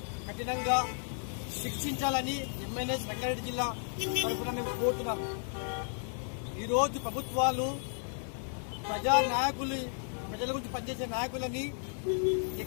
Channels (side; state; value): right; silent; 55 dB below the other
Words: కఠినంగా శిక్షించాలని ఎంఎన్ఎస్ రంగారెడ్డి జిల్లా తరఫున మేము కోరుతున్నాం. ఈరోజు ప్రభుత్వాలు ప్రజా నాయకులు, ప్రజల గురించి పనిచేసే నాయకులని